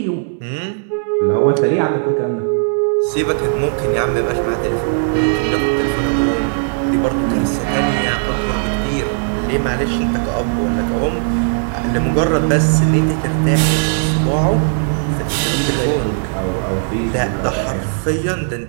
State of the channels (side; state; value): left; silent; 68 dB below the other